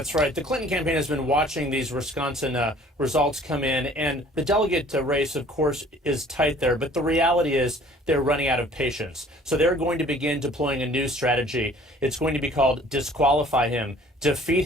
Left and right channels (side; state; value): both; normal; correlation 0.53